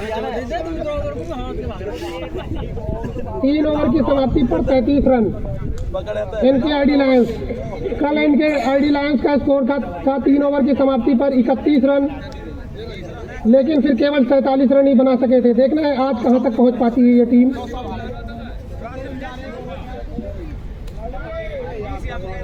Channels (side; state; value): both; identical; correlation 1.00